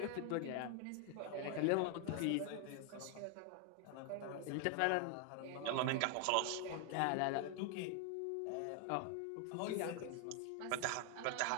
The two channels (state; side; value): different; both; correlation 0.01